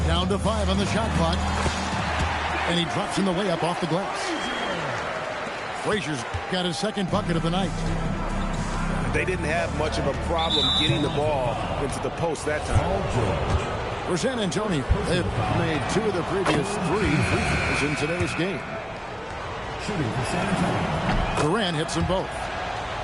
Down to 5 on the shot clock. And he drops in the layup off the glass. Frazier's got his second bucket of the night. They didn't have much of a problem getting the ball into the post that time. For San Antonio, they've made 2 of the previous 3 free throws in today's game. Durant hits them both.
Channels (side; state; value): both; identical; correlation 1.00